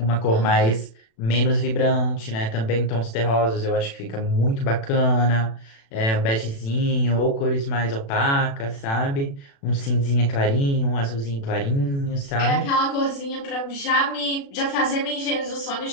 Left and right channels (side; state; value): right; late; 36 ms